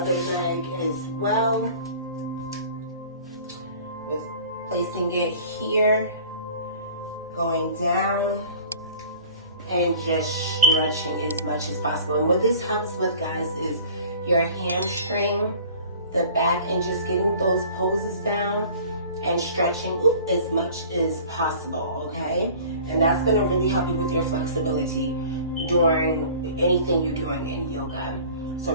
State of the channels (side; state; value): both; inverted; correlation -0.45